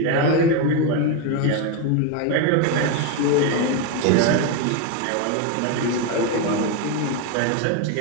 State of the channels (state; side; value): different; both; correlation 0.02